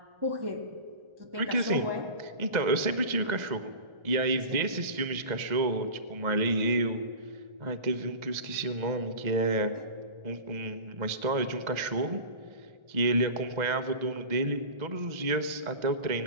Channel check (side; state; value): left; late; 2.0 ms